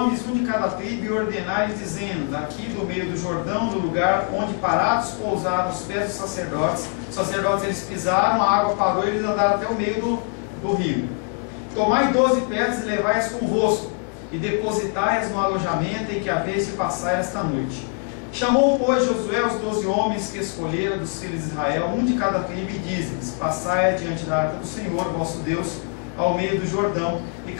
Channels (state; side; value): quieter; right; 38.7 dB